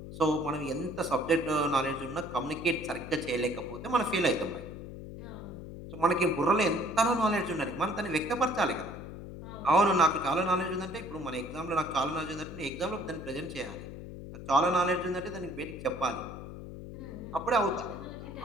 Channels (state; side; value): noise; left; hum, 11 dB below the sound